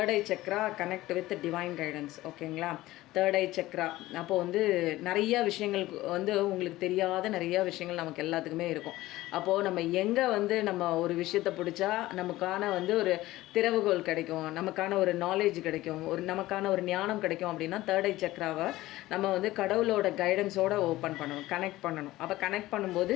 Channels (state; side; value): quieter; right; 17.1 dB